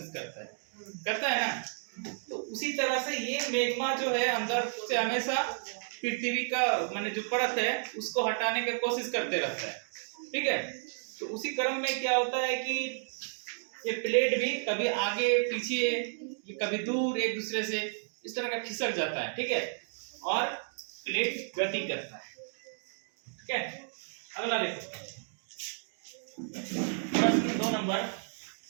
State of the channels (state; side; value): silent; left; digital silence